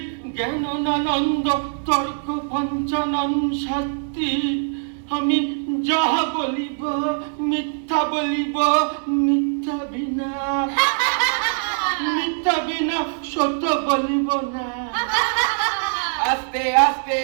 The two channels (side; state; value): left; silent; digital silence